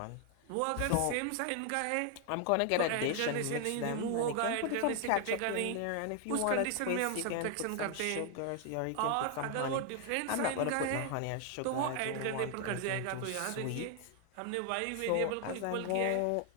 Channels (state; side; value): different; both; correlation 0.00